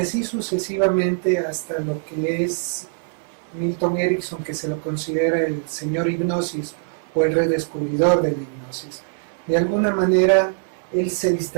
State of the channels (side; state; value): left; silent; digital silence